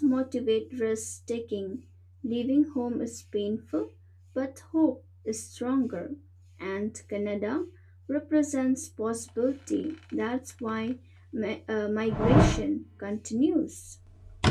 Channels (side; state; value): both; identical; correlation 1.00